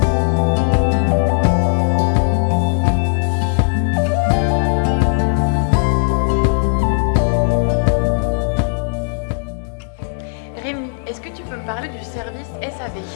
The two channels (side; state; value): right; silent; digital silence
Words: Rémi, est-ce que tu peux me parler du service SAV?